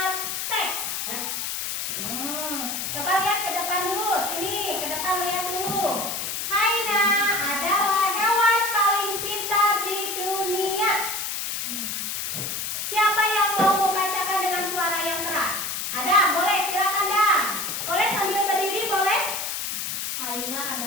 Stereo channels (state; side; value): noise; left; hiss, 3 dB below the sound